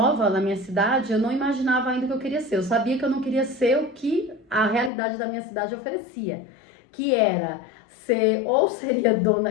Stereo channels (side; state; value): right; drops out; at 4.9 s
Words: na minha cidade, eu não imaginava ainda o que eu queria ser. Eu sabia que eu não queria ser o que a realidade da minha cidade oferecia, que era seria